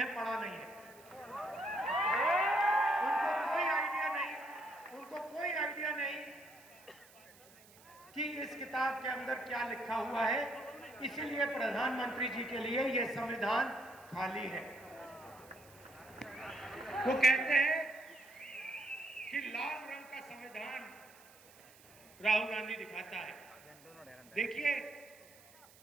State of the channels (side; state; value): right; noise; hiss, 24 dB below the sound